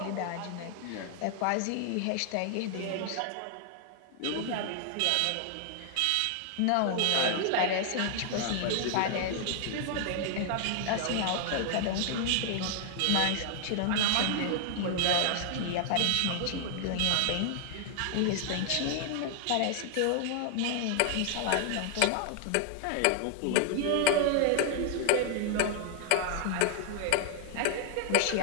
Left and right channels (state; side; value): different; both; correlation 0.00